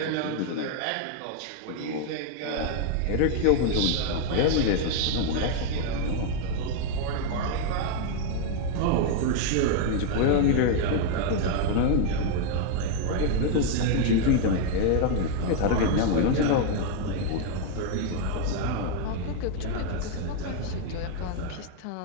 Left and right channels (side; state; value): both; different; correlation 0.00